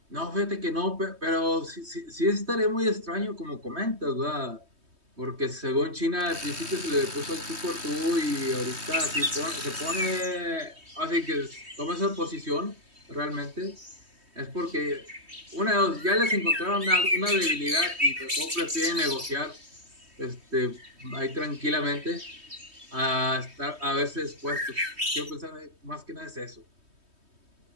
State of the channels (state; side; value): late; left; 3.2 ms